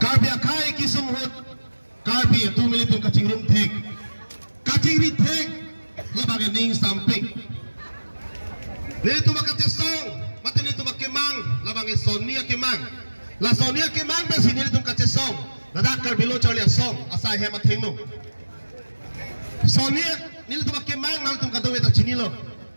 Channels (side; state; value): both; inverted; correlation -1.00